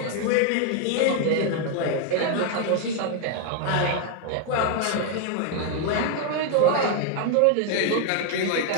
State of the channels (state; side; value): different; both; correlation 0.00